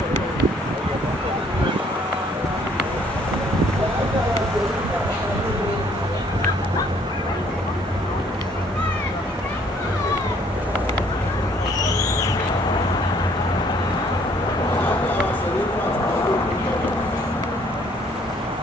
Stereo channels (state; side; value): normal; both; correlation 0.62